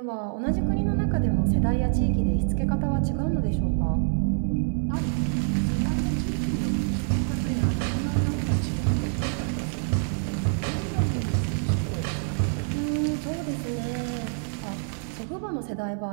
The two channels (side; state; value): left; silent; 61 dB below the other